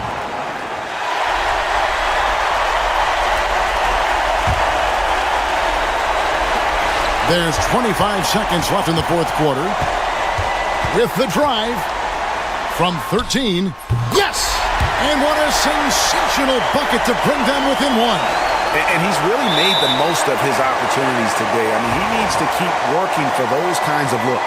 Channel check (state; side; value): identical; both; correlation 1.00